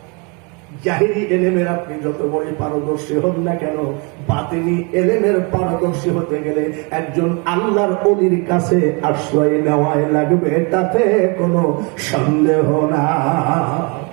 জাহিরি এলেমের আপনি যত বড় পারদর্শী হন না কেন, বাতিনি এলেমের পারদর্শী হতে গেলে একজন আল্লাহর ওলির কাছে আশ্রয় নেওয়াই লাগবে, তাতে কোনো সন্দেহ না।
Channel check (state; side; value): quieter; left; 32.1 dB